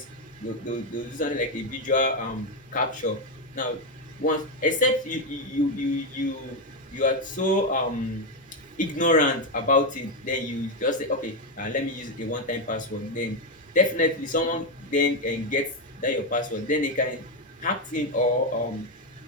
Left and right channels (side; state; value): both; normal; correlation 0.06